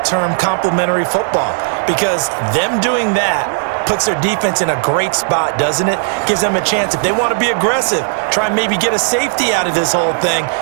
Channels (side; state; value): left; silent; digital silence